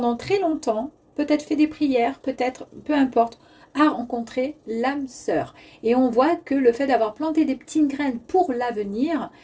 très longtemps, peut-être fait des prières, peut-être, peu importe, à rencontrer l'âme sœur. Et on voit que le fait d'avoir planté des petites graines pour l'avenir,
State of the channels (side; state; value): both; identical; correlation 1.00